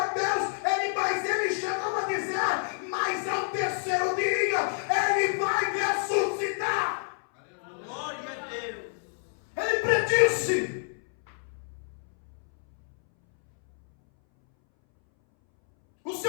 a Deus. Mas ele chegou a dizer: mas ao terceiro dia ele vai ressuscitar. Glória a Deus. Ele predisse. O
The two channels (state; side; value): silent; right; 59 dB below the other